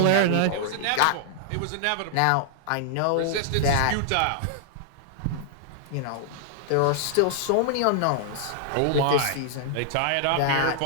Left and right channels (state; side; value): different; both; correlation -0.01